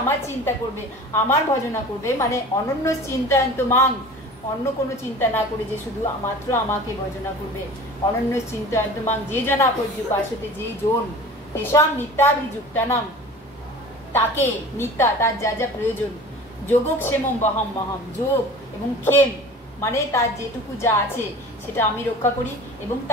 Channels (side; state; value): both; normal; correlation 0.40